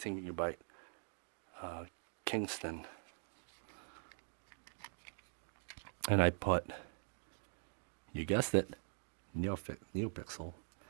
gigabyte Kingston. And I put, you guessed it, Neopixel. So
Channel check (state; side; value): silent; left; digital silence